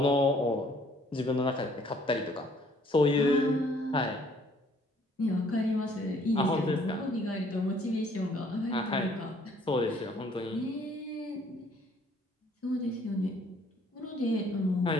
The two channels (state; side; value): normal; both; correlation 0.61